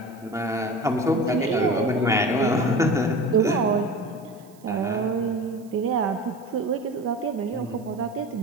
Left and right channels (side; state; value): right; noise; hiss, 29 dB below the sound